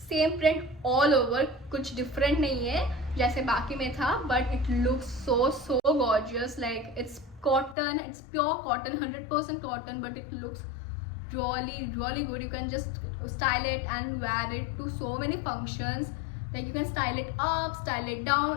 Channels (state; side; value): drops out; right; at 7.8 s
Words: same print all over. कुछ different नहीं है जैसे बाकी में था but it looks so gorgeous. Like it's cotton, it's pure cotton, 100% cotton but it looks really good. You can just style it and wear it to so many functions. Like you can style it up, style it